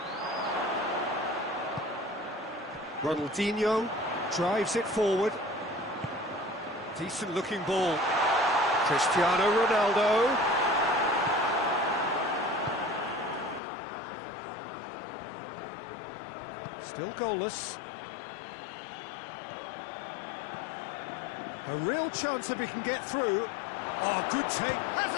Ronaldinho drives it forward. Decent looking ball. Cristiano Ronaldo. Still goalless. A real chance if he can get through. Oh, good take. Has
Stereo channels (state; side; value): drops out; right; at 13.6 s